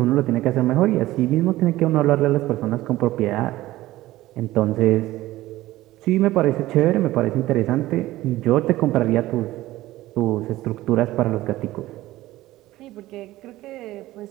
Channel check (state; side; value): quieter; left; 16.5 dB